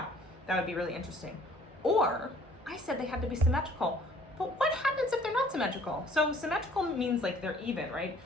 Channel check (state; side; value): normal; both; correlation 0.56